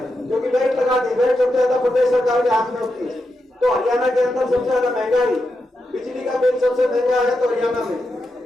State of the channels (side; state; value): both; normal; correlation 0.86